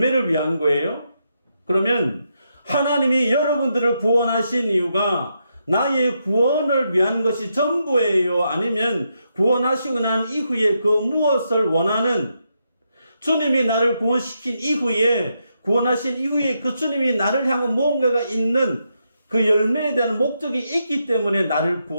위한 거예요? 그러면 하나님이 여러분들을 구원하신 이유가 나의 구원을 위한 것이 전부예요? 아니면 구원하시고 난 이후에 그 무엇을 원하는, 주님이 나를 구원시킨 이후에, 구원하신 이후에 그 주님이 나를 향한 무언가가 있는 그 열매에 대한 목적이 있기 때문에 나를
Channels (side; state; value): both; inverted; correlation -0.82